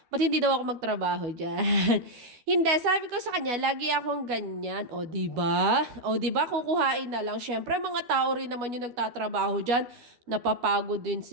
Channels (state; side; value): late; left; 12 ms